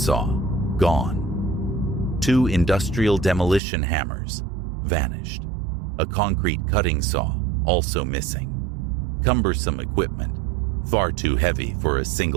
gone. 2 industrial demolition hammers, vanished. A concrete cutting saw, also missing. Cumbersome equipment, far too heavy for a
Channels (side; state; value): left; drops out; at 3.6 s